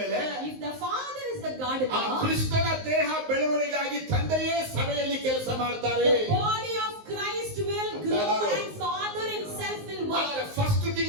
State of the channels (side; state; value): left; late; 19 ms